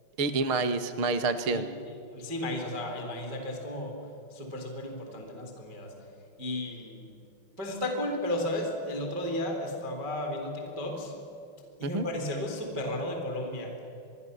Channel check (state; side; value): late; left; 6.4 ms